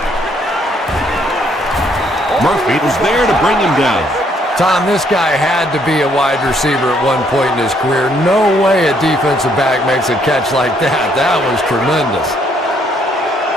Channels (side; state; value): both; normal; correlation 0.68